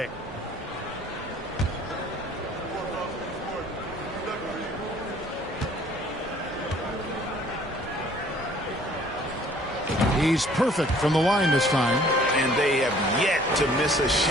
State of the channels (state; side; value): normal; both; correlation 0.56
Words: He's perfect from the line this time. And they have yet to miss a